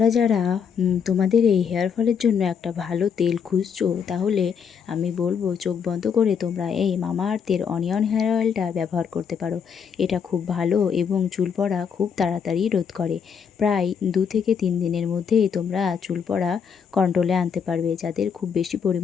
যারা তোমাদের এই হেয়ারফলের জন্য একটা ভালো তেল খুঁজছো, তাহলে আমি বলবো চোখ বন্ধ করে তোমরা এই মামা আর্থের অনিয়ন হেয়ার অয়েলটা ব্যবহার করতে পারো। এটা খুব ভালো এবং চুল পড়া খুব তাড়াতাড়ি রোধ করে। প্রায় 2 থেকে 3 দিনের মধ্যেই তোমরা চুল পড়া কন্ট্রোলে আনতে পারবে, যাদের খুব বেশি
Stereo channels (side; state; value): right; quieter; 6.9 dB